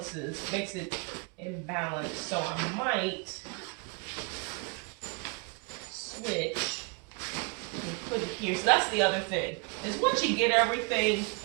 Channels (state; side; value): quieter; left; 31.2 dB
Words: makes it imbalanced, so I might switch and put it here. So that's the other thing, is once you get everything